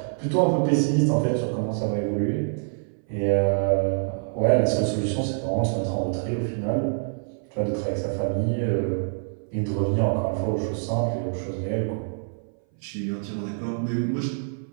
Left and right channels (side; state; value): left; silent; 58 dB below the other